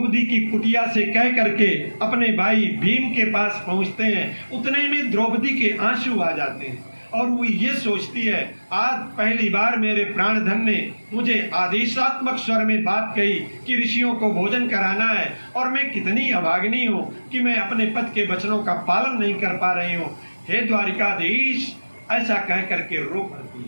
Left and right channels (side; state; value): both; inverted; correlation -1.00